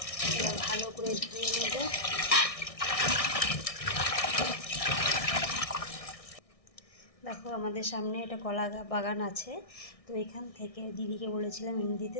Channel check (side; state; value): right; late; 1.6 ms